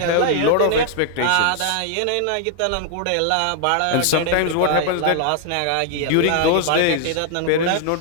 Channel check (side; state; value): both; different; correlation 0.00